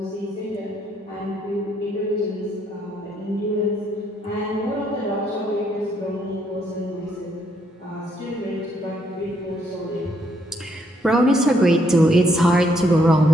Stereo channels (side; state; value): both; normal; correlation 0.72